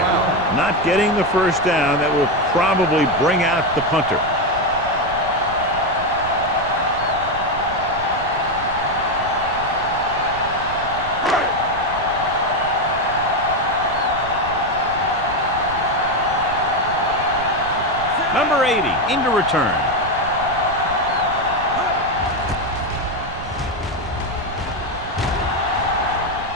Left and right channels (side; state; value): right; noise; rumble, 12 dB below the sound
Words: Not getting the first down. That will probably bring out the punter. Number 80 into return.